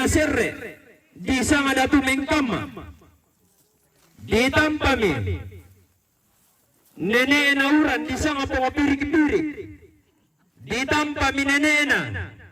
serre di sanga datu mengkama ditampami nene na uran di sanga pengopirik-pirik ditampa mi nene na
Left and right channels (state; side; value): identical; both; correlation 1.00